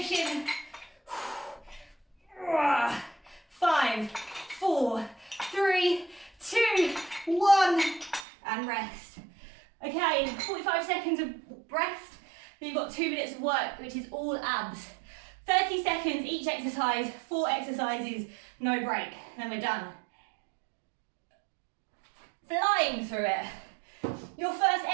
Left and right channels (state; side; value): drops out; left; at 8.2 s